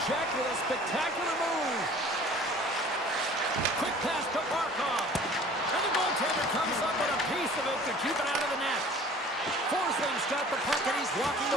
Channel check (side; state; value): both; normal; correlation 0.48